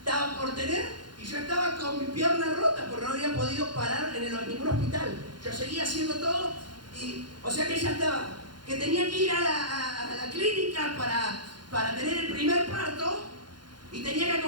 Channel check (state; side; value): late; left; 0.71 ms